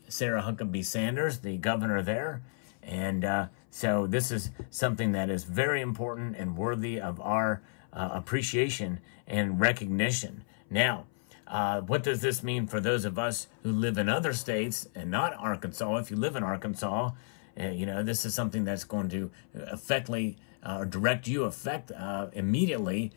Sarah Huckabee Sanders, the governor there. And so this is something that is very important and worthy of our appreciation and recognition. Now, what does this mean for those of us who live in other states and not Arkansas? If you live in Arkansas, this is something that's going to direct you effect immediately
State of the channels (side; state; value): right; silent; 56 dB below the other